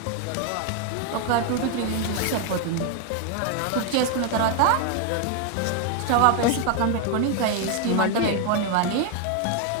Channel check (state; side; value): different; both; correlation 0.00